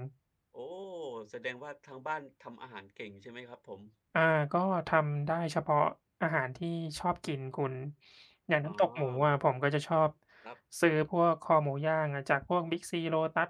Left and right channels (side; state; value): both; identical; correlation 1.00